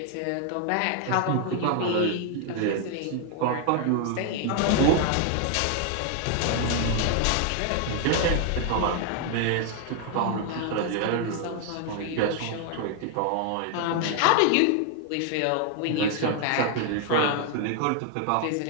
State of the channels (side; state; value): both; different; correlation 0.00